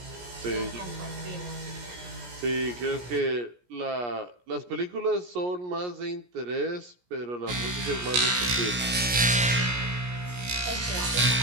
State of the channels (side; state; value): left; late; 17 ms